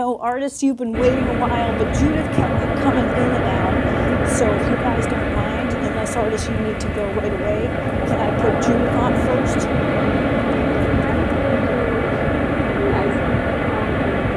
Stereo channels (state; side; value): identical; both; correlation 1.00